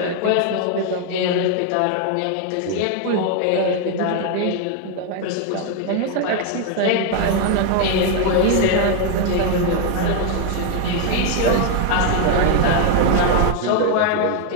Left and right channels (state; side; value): different; both; correlation 0.00